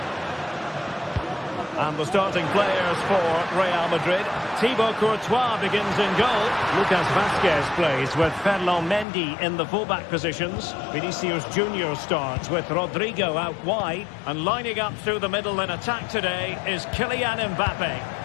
And the starting players for Real Madrid. Thibaut Courtois begins in goal. Lucas Vazquez plays with Ferland Mendy in the fullback positions. Vinicius Junior starts with Rodrigo out wide. And lining up through the middle in attack today is Kylian Mbappe.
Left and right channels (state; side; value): drops out; right; at 9.1 s